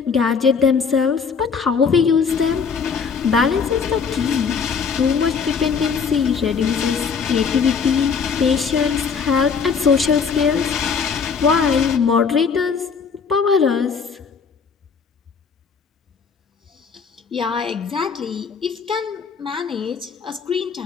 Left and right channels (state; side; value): quieter; right; 5.9 dB